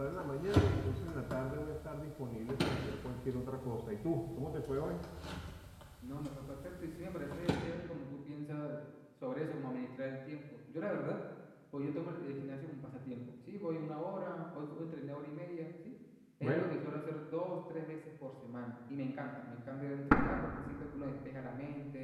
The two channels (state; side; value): identical; both; correlation 1.00